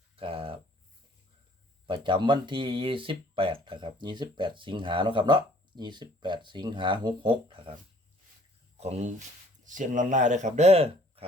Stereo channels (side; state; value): both; normal; correlation 0.57